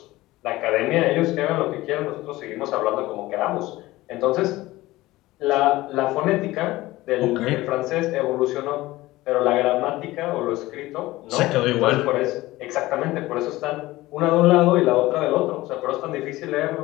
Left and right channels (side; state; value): right; quieter; 18.2 dB